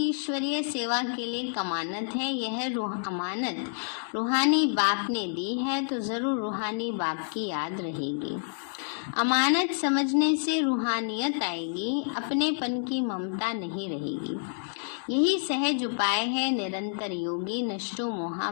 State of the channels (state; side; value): silent; right; digital silence